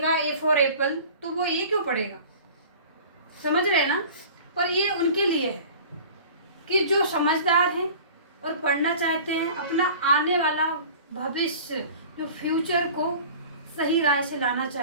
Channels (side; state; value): both; inverted; correlation -0.42